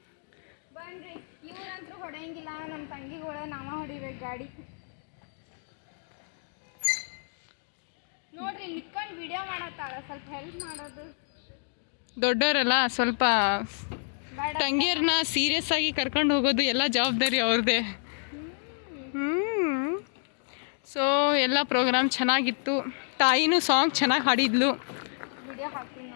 ಬನ್ರಿ. ಇವ್ರಂತೂ ಹೊಡೆಯಂಗಿಲ್ಲ, ನಮ್ಮ ತಂಗಿಗಳ ನಾವ ಹೊಡಿಬೇಕು ಗಾಡಿ. ನೋಡ್ರಿ ನಿತ್ಕೊಂಡು ವಿಡಿಯೋ ಮಾಡತ್ತಾಳ, ಸ್ವಲ್ಪ ಹೆಲ್ಪ್ ಮಾಡೋದು. ದೊಡ್ಡವರಲ್ಲ ಸ್ವಲ್ಪ ಬೇಡ ತಂಗಿಯರನ್ನ ಸೀರಿಯಸ್ ಆಗಿ ಕರ್ಕೊಂಡು ಹೋಗೋದು ಎಲ್ಲ ಜವಾಬ್ದಾರಿ ಅವ್ರದ್ದೇ. ಸೊ ಎಲ್ಲ ಪ್ರೋಗ್ರಾಮ್ ಚೆನ್ನಾಗಿತ್ತು. ತಾಯಿನೂ ಸಾಂಗ್ ಚೆನ್ನಾಗಿ ಹಾಡಿದ್ಲು. ವಿಡಿಯೋ ಹಾಕ್ತೀನಿ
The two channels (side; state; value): right; silent; 59 dB below the other